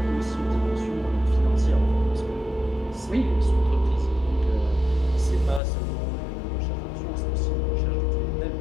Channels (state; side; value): drops out; right; at 5.6 s